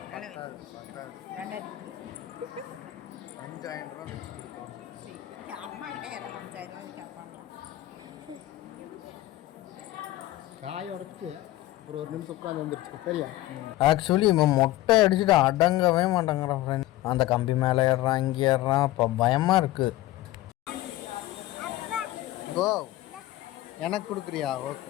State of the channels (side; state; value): right; quieter; 16.3 dB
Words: பத்தாது 2000 5000 ரூபா வச்சு கொடுத்தோம் சரி அம்மா கிட்ட யாராவது 5000 ரூபாய் கேட்பாங்களா காய் உடச்சி அப்புறம் ஒரு நிமிஷம் உட்காந்து வந்துருச்சு சரியா ஆக்சுவலி இவன் மொட்டை அடிச்சுட்டு அடங்கவே மாட்டேங்கிறான் ஃப்ரெண்ட் அந்த கம்பி மேலே ஏறுறான் இங்கே ஏறுறான் இப்போ பயமாக இருக்குது கோ எனக்கு கொடுக்குறியா